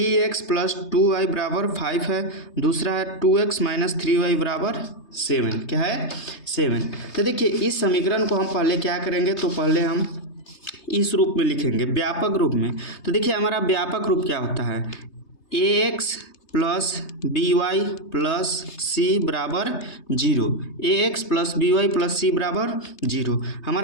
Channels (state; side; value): late; right; 3.3 ms